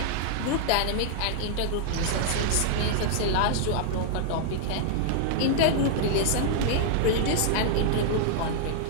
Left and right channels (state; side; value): different; both; correlation -0.01